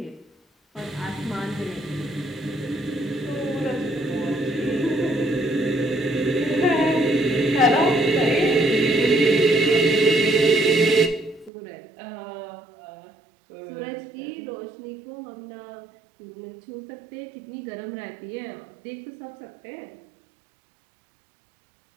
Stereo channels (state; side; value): drops out; left; at 11.5 s